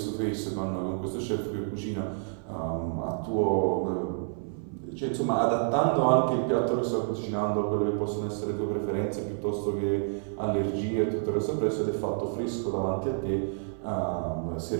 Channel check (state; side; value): silent; left; 59 dB below the other